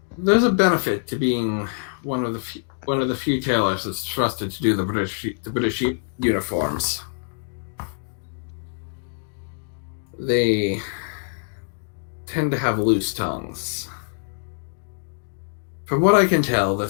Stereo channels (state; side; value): silent; right; digital silence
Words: a benefit to being one of the few tailors that's trusted to do the British uniforms. They tend to have loose tongues. From what I can tell, the